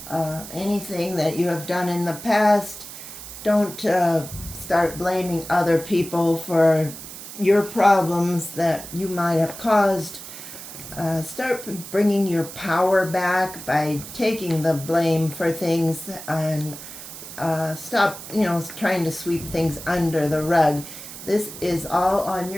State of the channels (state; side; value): noise; right; hiss, 12 dB below the sound